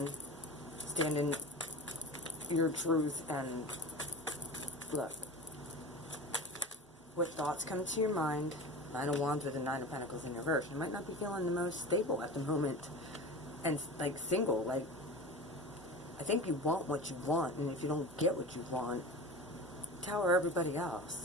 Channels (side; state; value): both; normal; correlation 0.32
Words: Standing your truth and look. What thoughts come to your mind? Nine of Wands with the Nine of Pentacles in reverse. You might not be feeling the most stable at the moment. And like single, like I think you want what you want, and if you don't get what you want, tower everybody